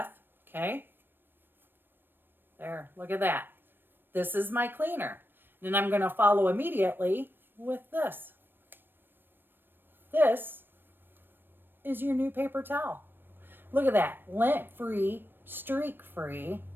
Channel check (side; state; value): left; late; 0.096 ms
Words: okay? There, look at that. This is my cleaner. Then I'm going to follow immediately with this. This is your new paper towel. Look at that. Lint-free, streak-free,